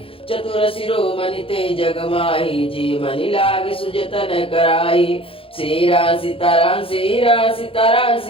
चतुर शिरोमणि ते जग माही, जी मनि लाग सुजतन कराई। श्री राम सीताराम, श्री राम सीताराम,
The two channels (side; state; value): right; late; 0.27 ms